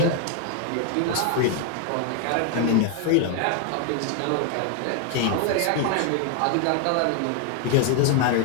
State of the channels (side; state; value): both; different; correlation 0.00